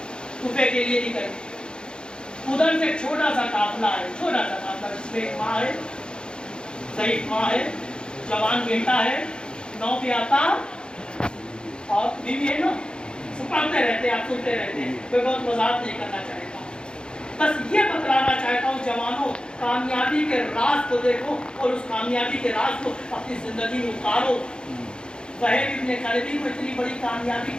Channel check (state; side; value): late; right; 0.050 ms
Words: कुफे के लिए निकले। उधर से छोटा सा काफिला है, छोटा सा काफिला, जिसमें एक माँ है, ज़ईफ़ माँ है, जवान बेटा है, 9 पे आता और बीवी है ना, सब पढ़ते रहते हैं, आप सुनते रहते हैं। कोई बहुत वजाहत नहीं करना चाहता, बस ये बतलाना चाहता हूँ जवानों, कामयाबी के राज को देखो और उस कामयाबी के राज को अपनी जिंदगी में उतारो। वहीद इब्न करबी को इतनी बड़ी कामयाबी